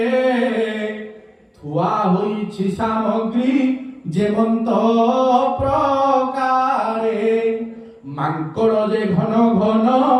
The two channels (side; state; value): both; identical; correlation 1.00